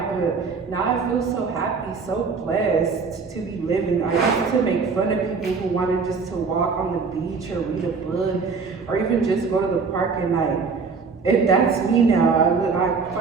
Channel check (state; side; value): quieter; left; 4.9 dB